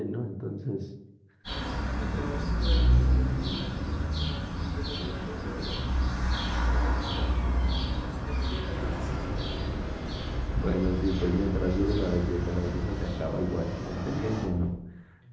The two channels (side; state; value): both; identical; correlation 1.00